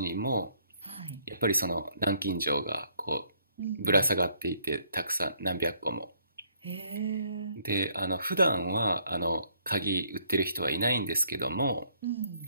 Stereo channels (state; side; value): inverted; both; correlation -0.67